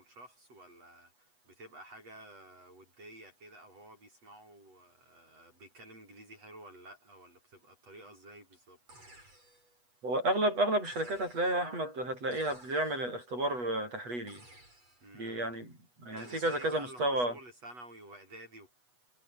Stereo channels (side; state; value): left; late; 8.2 ms